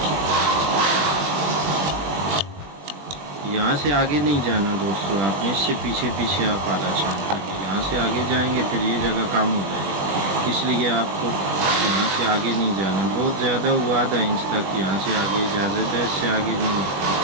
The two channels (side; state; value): left; late; 20 ms